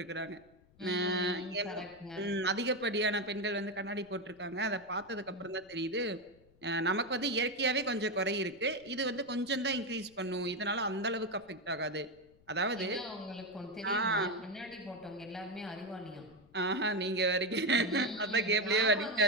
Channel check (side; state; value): left; noise; rumble, 29 dB below the sound